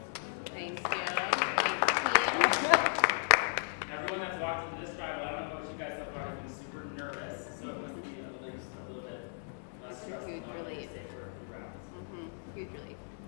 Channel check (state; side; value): silent; right; digital silence